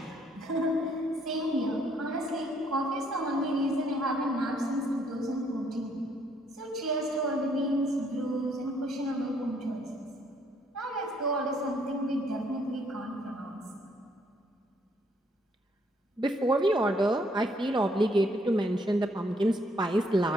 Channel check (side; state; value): both; normal; correlation 0.68